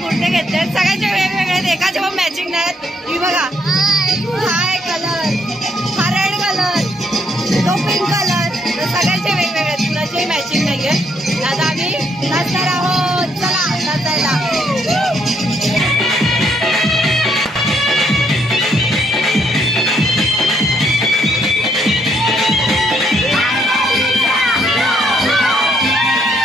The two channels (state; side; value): normal; both; correlation 0.72